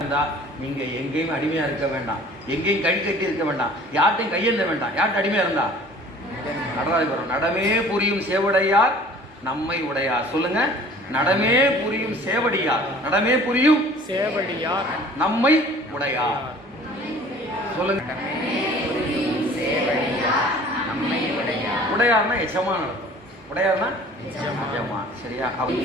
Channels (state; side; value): normal; both; correlation 0.49